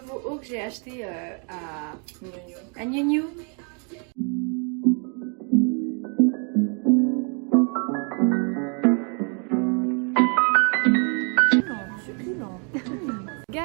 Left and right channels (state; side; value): quieter; left; 38.3 dB